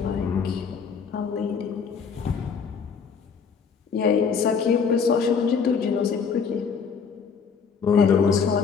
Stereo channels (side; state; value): right; quieter; 6.0 dB